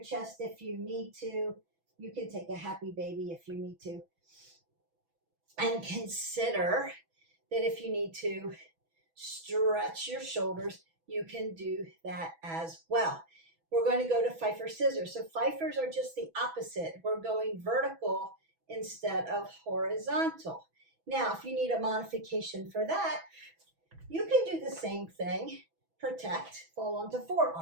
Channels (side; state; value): left; late; 6.1 ms